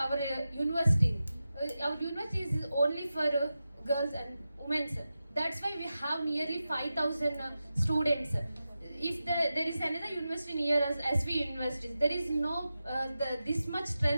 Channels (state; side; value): inverted; both; correlation -0.92